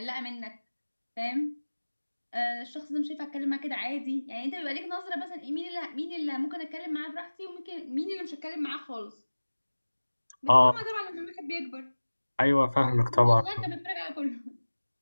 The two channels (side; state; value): both; inverted; correlation -1.00